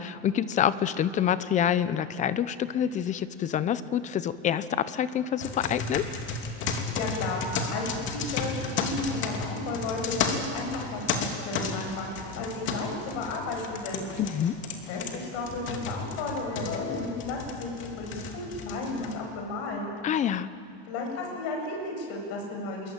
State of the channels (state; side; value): quieter; right; 5.9 dB